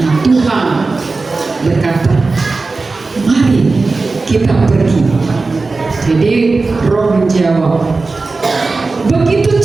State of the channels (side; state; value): left; quieter; 3.8 dB